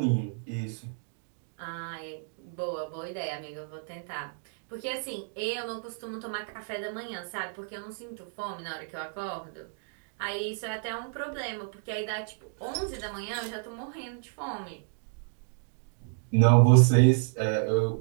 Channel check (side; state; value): left; silent; digital silence